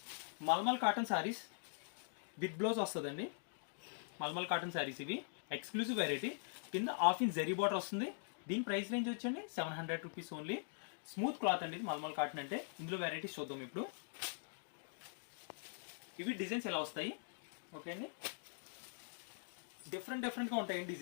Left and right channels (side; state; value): right; silent; digital silence